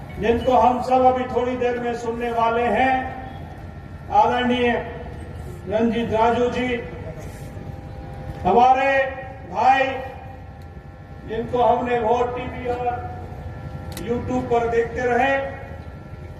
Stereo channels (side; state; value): both; identical; correlation 1.00